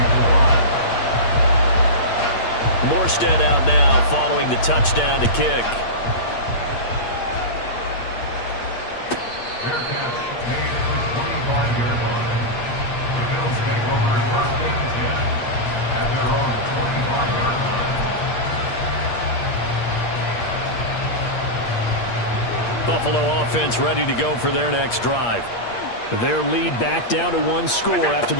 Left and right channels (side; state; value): right; late; 8.5 ms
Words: Morstead out now following the touchdown to kick. Fair catch made at the 25-yard line. The Bills take over 1st and 10 at their own 25-yard line. Buffalo offense ready to go for their next drive. Their lead back down to 1 score after